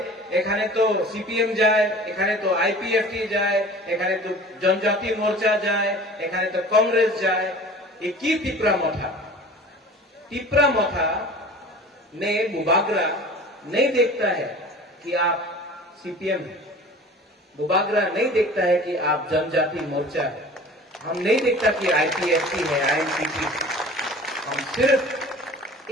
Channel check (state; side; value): normal; both; correlation 0.42